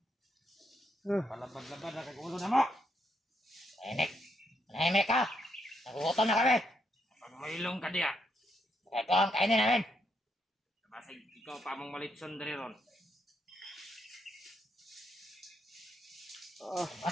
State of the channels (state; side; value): normal; both; correlation 0.77